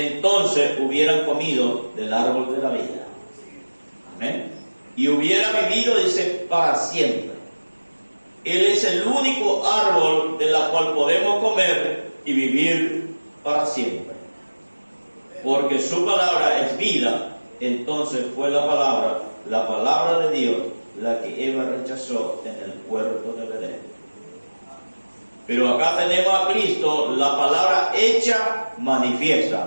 hubieran comido del árbol de la vida. Amén. y hubiera vivido, dice, para siempre. Él es el único árbol de la cual podemos comer y vivir para siempre. Porque su palabra es vida. Entonces fue la palabra de Dios, la que Eva rechazó en el huerto del Edén. Pero acá tenemos a Cristo, la palabra hecha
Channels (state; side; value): inverted; both; correlation -1.00